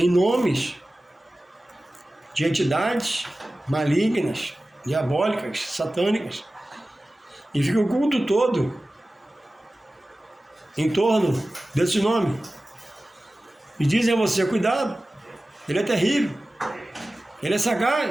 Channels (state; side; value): normal; both; correlation 0.96